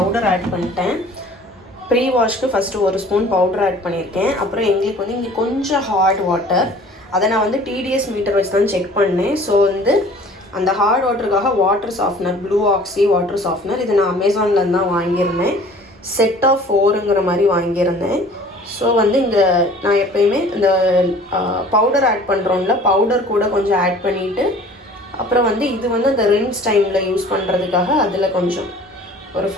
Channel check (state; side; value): normal; both; correlation 0.49